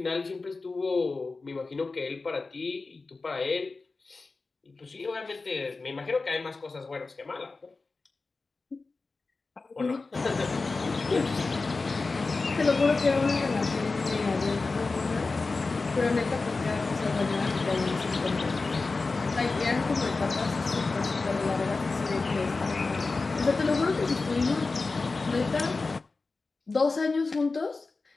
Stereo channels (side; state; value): right; quieter; 3.9 dB